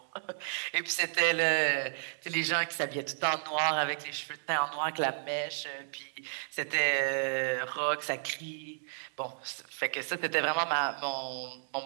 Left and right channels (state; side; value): silent; left; digital silence